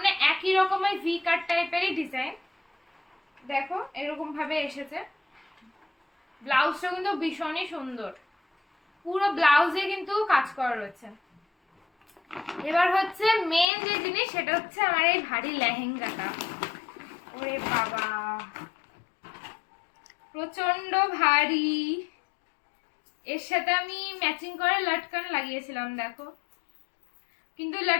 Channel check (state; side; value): drops out; right; at 13.7 s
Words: একই রকমের ভি কাট টাইপেরই ডিজাইন, দেখো এরকম ভাবে এসেছে। ব্লাউজটা কিন্তু ভীষণই সুন্দর, পুরো ব্লাউজে কিন্তু কাজ করা রয়েছে। এবার হচ্ছে মেন যে জিনিস সেটা হচ্ছে আমার এই ভারী লেহেঙ্গাটা। ওরে বাবা প্রচন্ড ভারী। এর সাথে আমি ম্যাচিং করে লটকান লাগিয়েছিলাম দেখো, কিন্তু